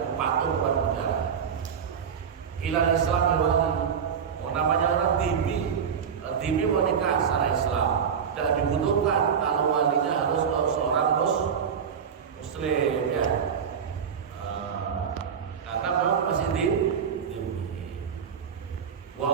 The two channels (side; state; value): left; quieter; 7.2 dB